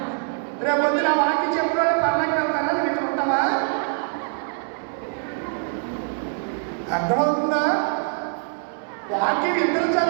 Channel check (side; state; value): left; silent; 58 dB below the other